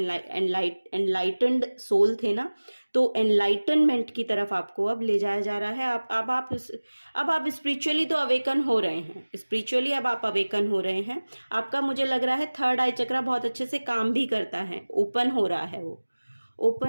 एनलाइटेंड सोल थे ना, तो एनलाइटनमेंट की तरफ आपको अब ले जाया जा रहा है। अब आप स्पिरिचुअली तो अवेकन हो रहे हैं, स्पिरिचुअली अब आप अवेकन हो रहे हैं। आपका मुझे लग रहा है थर्ड आई चक्रा बहुत अच्छे से काम भी करता है, ओपन हो रहा है वो,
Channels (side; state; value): both; inverted; correlation -1.00